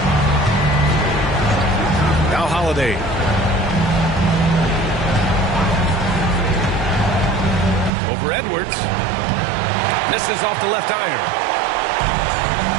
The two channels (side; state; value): left; drops out; at 7.9 s